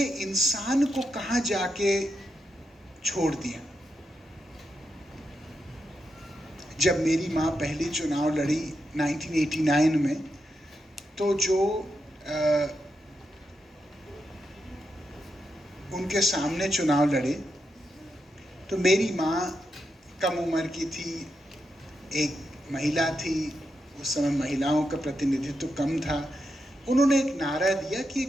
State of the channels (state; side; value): normal; both; correlation 0.85